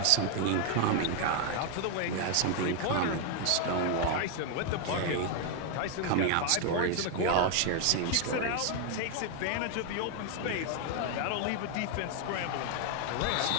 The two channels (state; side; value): different; both; correlation 0.01